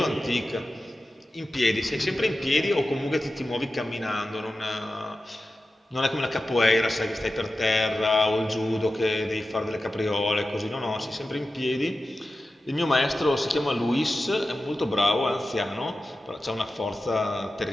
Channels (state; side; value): normal; both; correlation 0.93